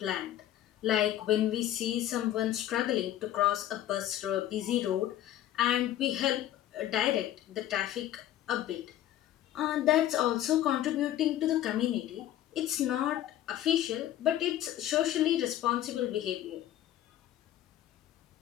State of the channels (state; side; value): quieter; right; 12.6 dB